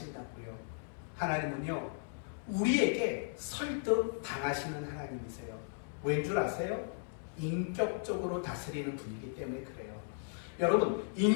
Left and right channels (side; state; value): right; silent; 54 dB below the other